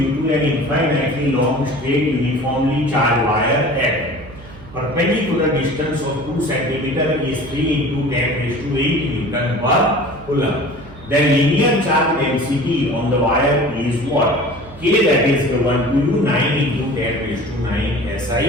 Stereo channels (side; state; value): right; noise; hum, 19 dB below the sound